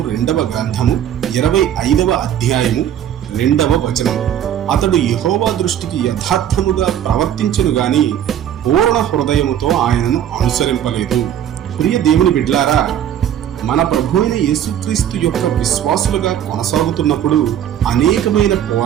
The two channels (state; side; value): quieter; left; 10.3 dB